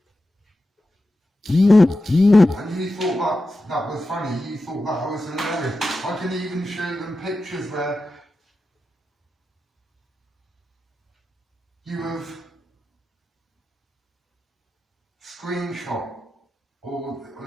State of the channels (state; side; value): normal; both; correlation 0.91